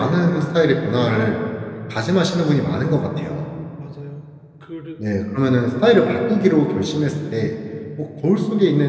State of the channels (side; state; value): both; identical; correlation 1.00